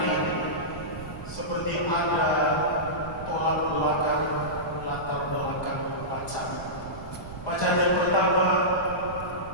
ini, seperti ada tolak belakang, latar belakang bacaan. Bacaan yang pertama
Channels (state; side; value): noise; right; rumble, 13 dB below the sound